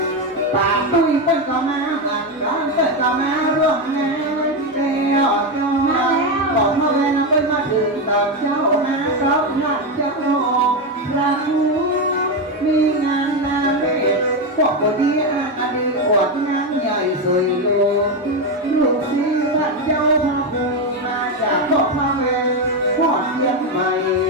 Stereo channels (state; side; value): normal; both; correlation 0.10